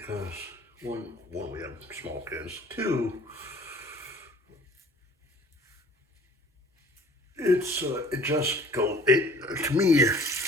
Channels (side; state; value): both; normal; correlation 0.51